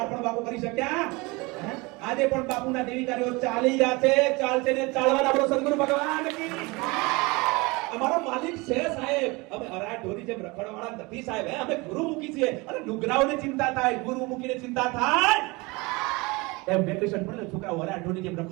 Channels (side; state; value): left; quieter; 25.1 dB